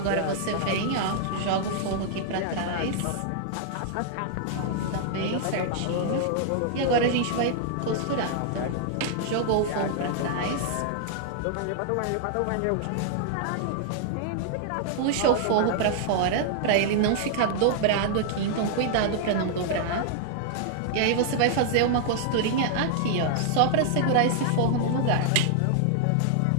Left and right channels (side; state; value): both; different; correlation -0.01